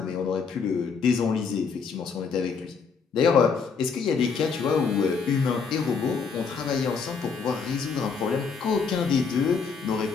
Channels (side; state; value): right; quieter; 5.5 dB